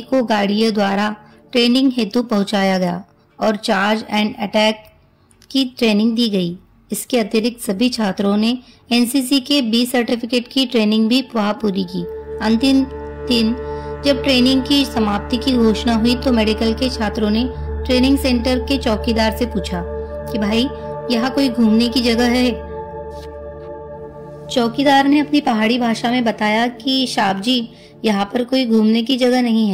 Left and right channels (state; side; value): identical; both; correlation 1.00